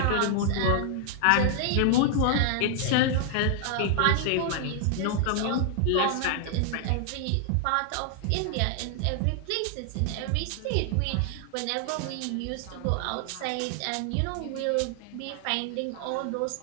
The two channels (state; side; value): different; both; correlation 0.00